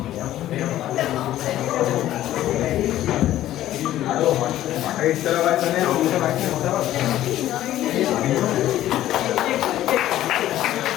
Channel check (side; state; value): right; quieter; 13.4 dB